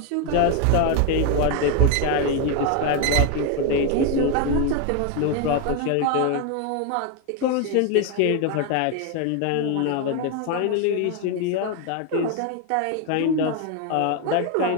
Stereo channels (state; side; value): different; both; correlation 0.01